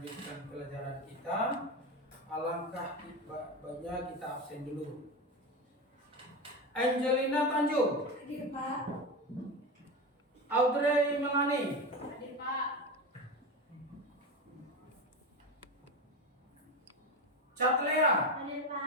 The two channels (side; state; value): both; normal; correlation 0.20